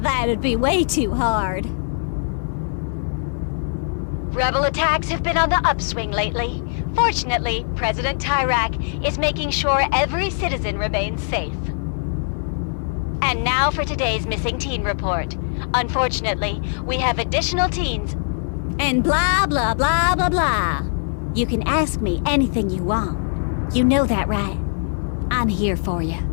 that'd be way too hard. Rebel attacks have been on the upswing lately. Fortunately, President Tyrak is making sure every citizen remains safe. And now for today's missing teen report. Unfortunately, we have additional teens. And blah, blah, blah, blah, blah. You can ask me anything you want. You know that, right? I'm here for you.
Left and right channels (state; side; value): silent; right; 64 dB below the other